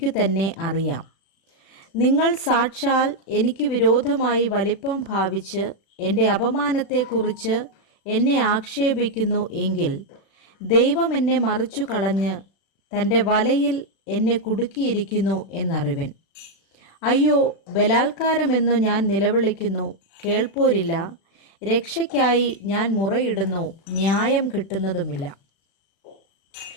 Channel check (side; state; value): right; late; 36 ms